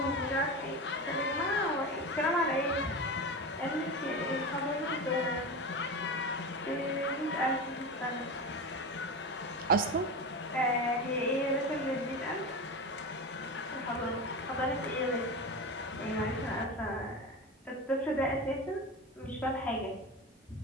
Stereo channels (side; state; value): both; normal; correlation 0.24